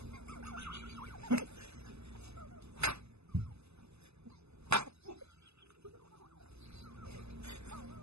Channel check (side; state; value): left; late; 0.79 ms